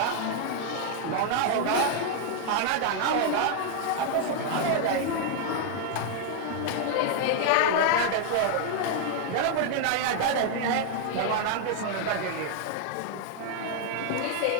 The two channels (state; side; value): different; both; correlation 0.00